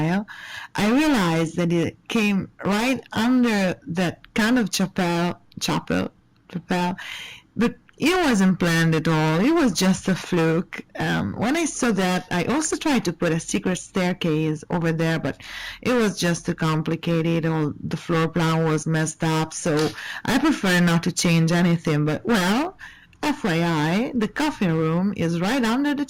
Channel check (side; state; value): both; identical; correlation 1.00